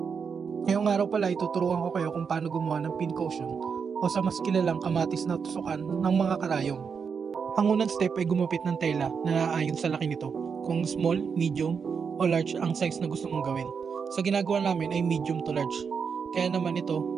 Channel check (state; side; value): quieter; left; 6.1 dB